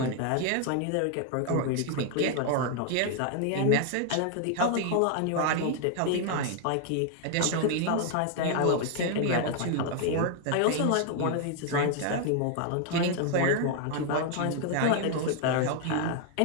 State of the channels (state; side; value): different; both; correlation 0.00